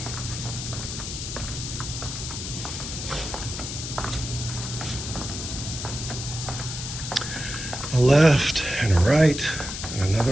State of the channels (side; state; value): left; noise; hiss, 6 dB below the sound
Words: a left and a right and